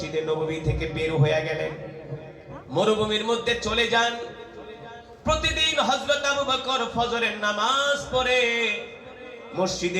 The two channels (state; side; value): identical; both; correlation 1.00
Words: নববী থেকে বের হয়ে গেলেন, মরুভূমির মধ্যে চলে যান। প্রতিদিন হযরত আবু বকর ফজরের নামাজ পড়ে